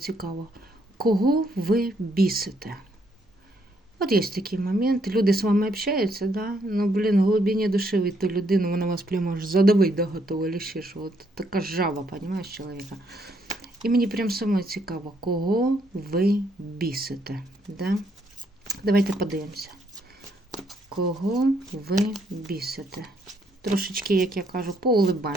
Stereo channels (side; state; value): both; normal; correlation 0.72